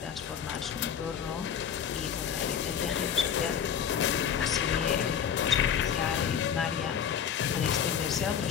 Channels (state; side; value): quieter; right; 8.0 dB